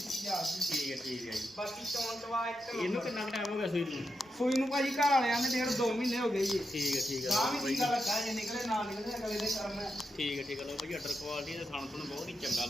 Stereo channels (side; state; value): both; normal; correlation 0.87